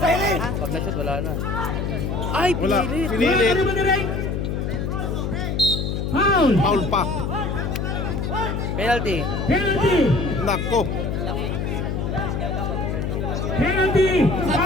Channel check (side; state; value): left; noise; hum, 1 dB below the sound